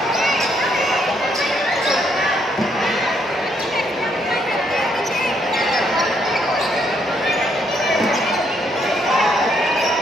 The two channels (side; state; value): both; normal; correlation 0.73